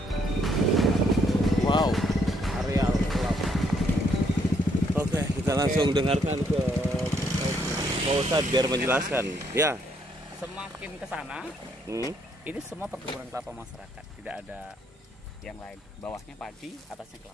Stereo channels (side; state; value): both; normal; correlation 0.71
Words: wow, areal kelapa. Oke, kita langsung dengarkan ke Pak Ustadz biar menjelaskan. Ya. Semakin ke sana, ini semua perkebunan kelapa masyarakat, tidak ada yang lain. Bawahnya padi, atasnya